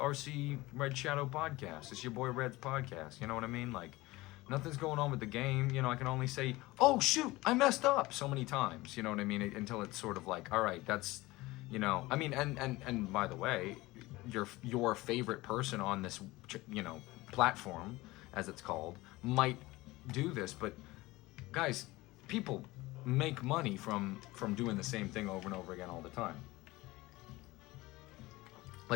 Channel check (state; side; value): quieter; right; 20.2 dB